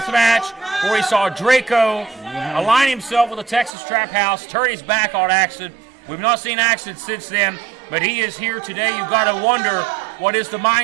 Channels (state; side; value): drops out; left; at 3.7 s